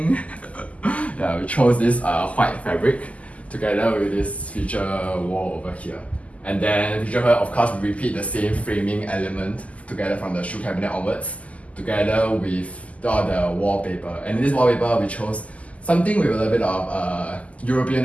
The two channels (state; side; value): late; right; 0.069 ms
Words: Yeah, we chose this white fabric together with this feature wall over here. And then feature here, of course, we repeat the same framing element together from the shoe cabinet onwards, together with all the wallpaper. And in this wallpaper, we chose something with a little bit of European